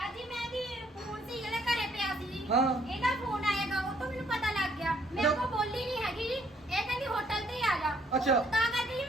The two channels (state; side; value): normal; both; correlation 0.66